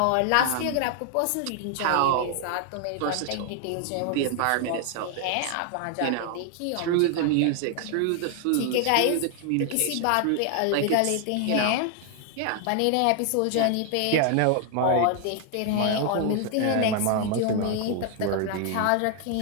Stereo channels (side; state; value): both; different; correlation 0.00